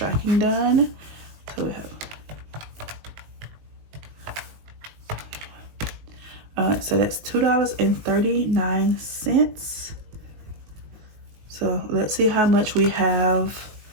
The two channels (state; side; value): late; left; 19 ms